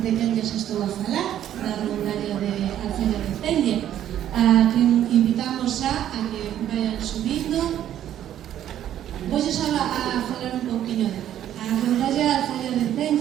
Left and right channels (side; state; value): left; quieter; 11.2 dB